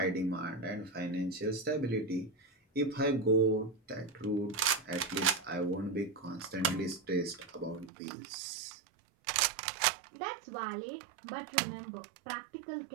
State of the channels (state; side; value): drops out; left; at 7.9 s